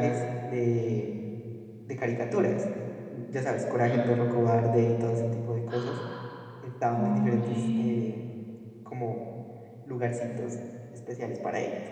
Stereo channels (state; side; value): identical; both; correlation 1.00